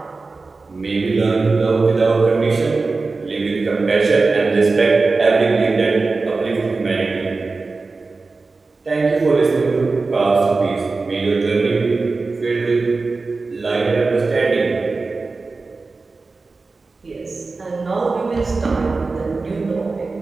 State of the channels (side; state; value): left; quieter; 3.9 dB